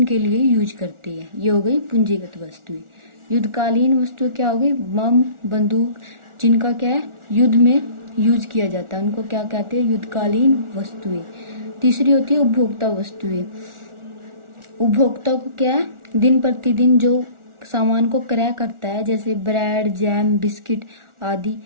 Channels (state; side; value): late; left; 1.4 ms